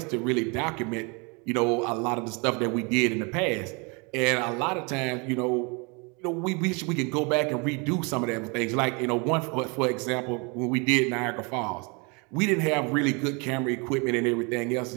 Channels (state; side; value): quieter; left; 30.9 dB